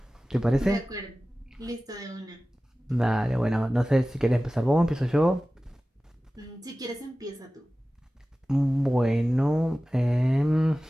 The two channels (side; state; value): both; normal; correlation 0.96